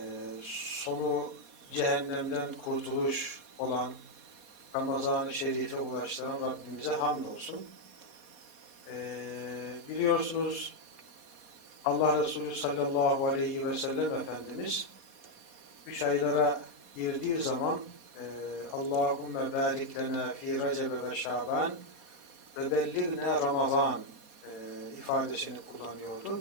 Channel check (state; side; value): late; left; 4.2 ms